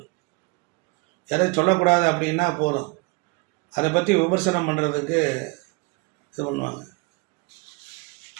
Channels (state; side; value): quieter; left; 27.5 dB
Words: எதை சொல்லக்கூடாது அப்படின்னா போதும், அதை பற்றி விமர்சனம் பண்ணுறதுக்கு இது பண்ணுவாங்க.